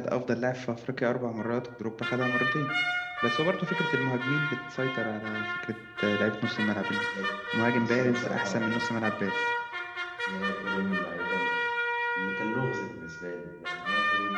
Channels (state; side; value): identical; both; correlation 1.00